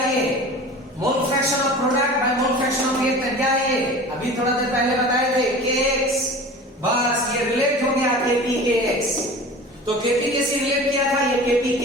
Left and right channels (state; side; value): normal; both; correlation 0.38